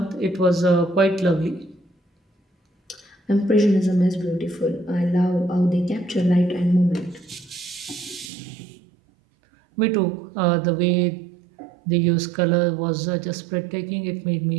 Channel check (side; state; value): left; drops out; at 8.3 s